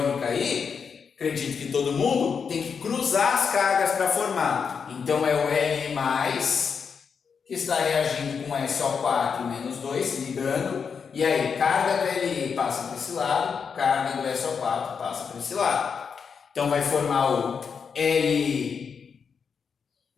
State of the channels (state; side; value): quieter; right; 6.2 dB